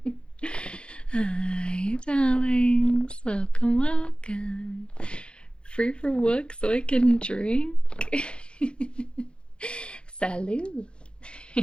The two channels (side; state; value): right; late; 0.055 ms